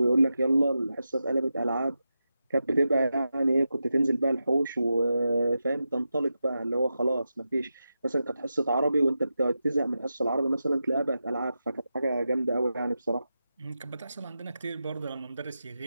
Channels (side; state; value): both; inverted; correlation -0.90